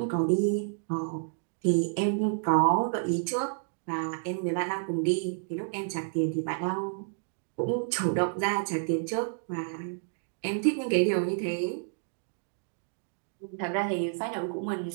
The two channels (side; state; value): left; silent; digital silence